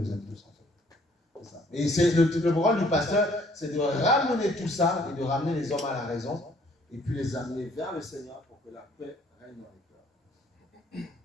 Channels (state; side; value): normal; both; correlation 0.61